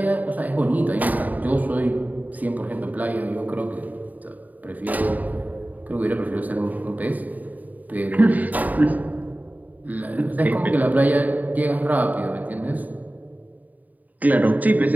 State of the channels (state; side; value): late; left; 0.079 ms